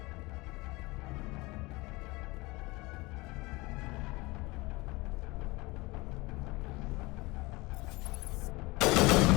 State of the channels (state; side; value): quieter; right; 23.2 dB